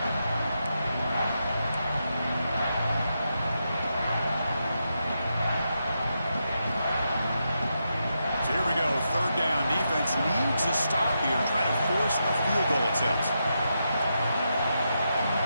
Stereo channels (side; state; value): both; inverted; correlation -0.85